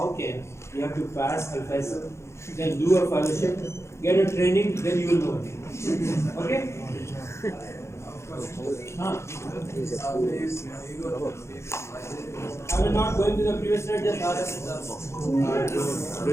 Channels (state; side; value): late; right; 0.13 ms